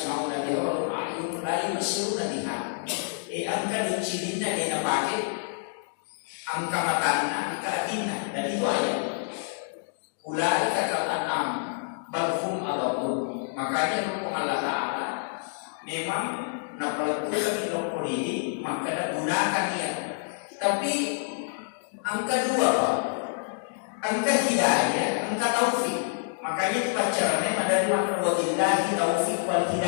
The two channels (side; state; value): right; silent; digital silence